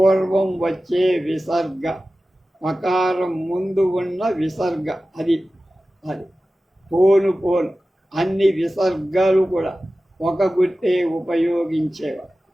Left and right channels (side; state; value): both; normal; correlation 0.95